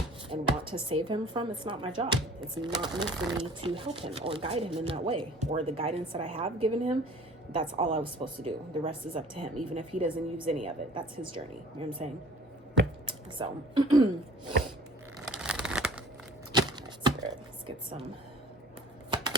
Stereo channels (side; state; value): both; normal; correlation 0.49